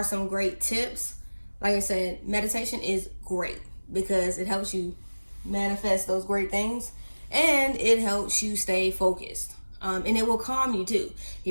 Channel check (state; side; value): inverted; both; correlation -1.00